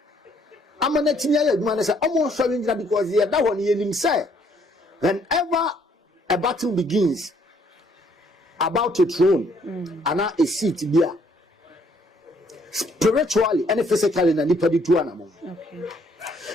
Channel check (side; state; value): both; normal; correlation 0.66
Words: amanetimi aye adwuma ne say omo hware ngira because ye da ho ne yenim say whenever a battle begins about a throne and a seat there spiritually and physically na nipa di tu anamon. Okay.